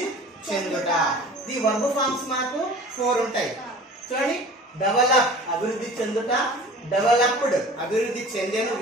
చెందుట. ది వర్బ్ ఫార్మ్స్ మనకు 4 ఉంటాయి. చూడండి, డెవలప్ అభివృద్ధి చెందుట, డెవలప్డ్ అభివృద్ధి చెందెను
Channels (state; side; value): normal; both; correlation 0.42